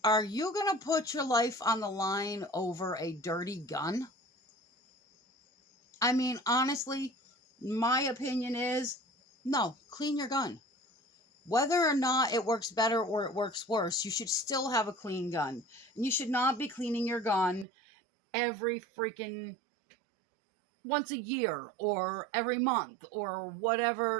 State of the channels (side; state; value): left; drops out; at 17.7 s